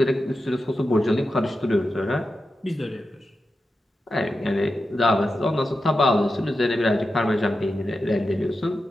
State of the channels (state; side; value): normal; both; correlation 0.90